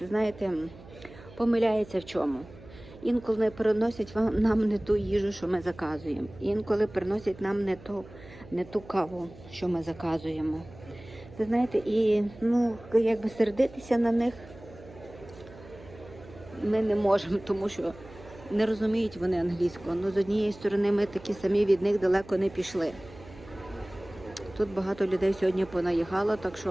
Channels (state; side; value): noise; right; hum, 19 dB below the sound